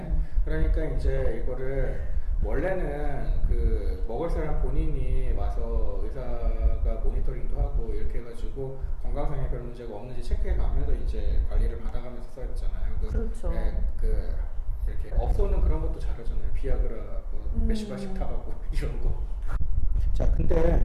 그러니까 이제 이거를 원래는 그 먹을 사람 본인이 와서 의사가 모니터링도 하고 이렇게 해가지고 건강상에 별 문제가 없는지 체크해가면서 이제 관리를 받아가면서 써야 되잖아요. 그렇죠. 이렇게 업소는 그런 것도 잘하잖아요. 비아그라 몇십 알씩 타가고 이런 거. 자,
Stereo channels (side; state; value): both; identical; correlation 1.00